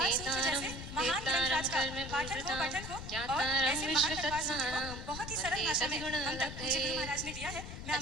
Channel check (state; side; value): noise; left; rumble, 9 dB below the sound